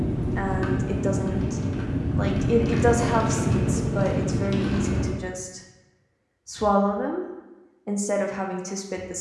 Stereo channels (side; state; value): both; identical; correlation 1.00